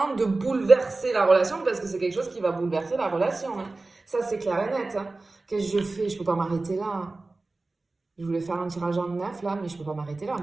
de bouleverser la relation parce que c'est quelque chose qui va bouleverser la relation. Hein. Ça, c'est clair et net. Hein. Qu'est-ce que je fais? Je peux pas m'arrêter là. Hein. Je voulais faire un tirage en neuf là, mais je peux pas m'arrêter là.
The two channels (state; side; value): quieter; left; 3.3 dB